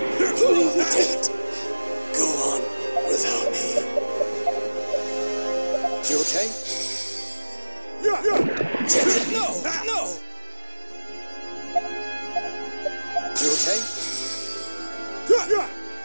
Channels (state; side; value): inverted; both; correlation -1.00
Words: go on without me. You okay? Damn it, no! No! You okay?